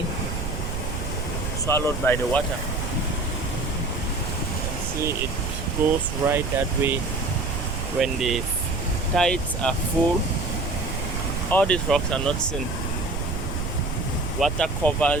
swallowed by the water. You can see it goes right that way. When the tides are full, all these rocks are not seen. Water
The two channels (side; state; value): right; noise; rumble, 4 dB below the sound